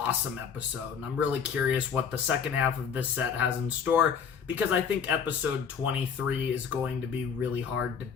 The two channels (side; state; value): right; quieter; 6.9 dB